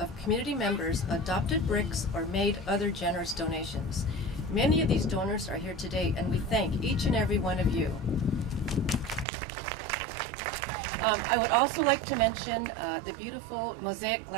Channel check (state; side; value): drops out; left; at 9.2 s